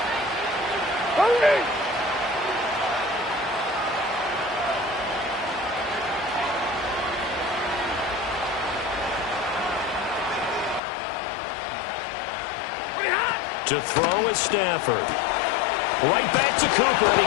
To throw is Stafford. Right back to Cooper, and he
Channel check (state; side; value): drops out; right; at 10.8 s